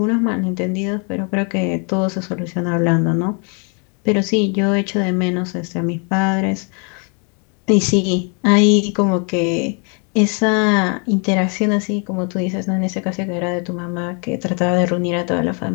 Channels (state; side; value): quieter; right; 37.2 dB